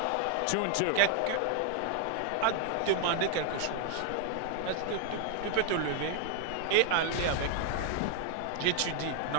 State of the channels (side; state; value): both; different; correlation 0.00